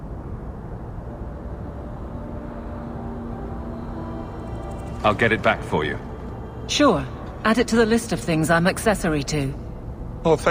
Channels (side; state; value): both; identical; correlation 1.00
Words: I'll get it back for you. Sure. Add it to the list of things I'm accessory to. Oh,